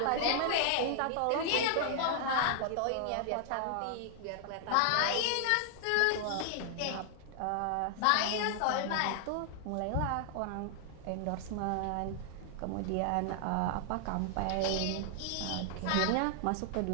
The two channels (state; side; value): different; both; correlation 0.00